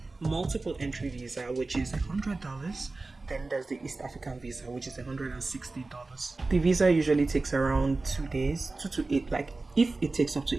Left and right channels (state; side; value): quieter; left; 3.4 dB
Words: multiple entry visa, which is $100. Then there's the East African visa, which is $160. The visa usually takes around 2 days, 2 to 8. Like if it takes up